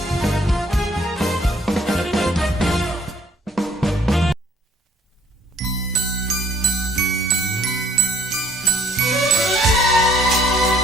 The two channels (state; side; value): normal; both; correlation 0.61